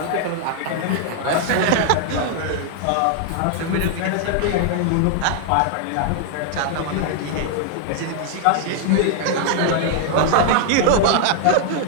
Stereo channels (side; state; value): both; different; correlation 0.00